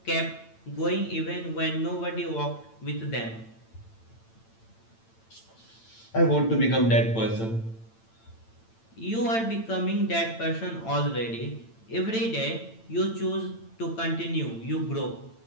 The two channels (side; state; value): right; late; 8.9 ms